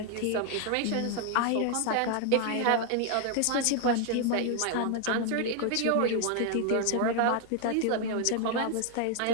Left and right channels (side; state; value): both; different; correlation 0.00